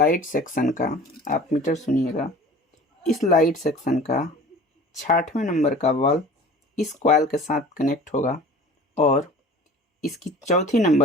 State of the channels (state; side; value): normal; both; correlation 0.43